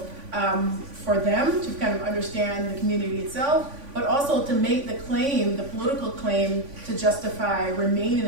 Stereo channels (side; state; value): left; late; 3.5 ms